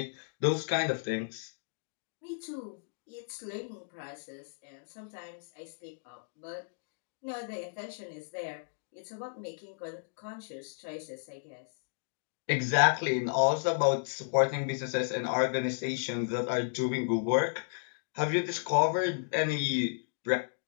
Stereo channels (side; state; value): right; silent; digital silence